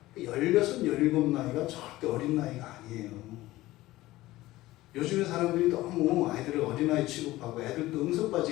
16, 17 나이가 절대 어린 나이가 아니에요. 요즘에 사람들이 너무 아이들을 어린아이 취급하고 애들도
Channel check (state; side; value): quieter; right; 17.3 dB